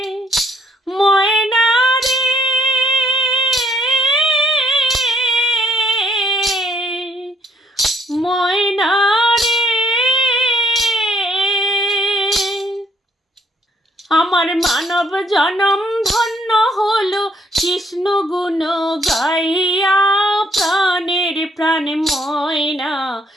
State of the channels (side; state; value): both; normal; correlation 0.67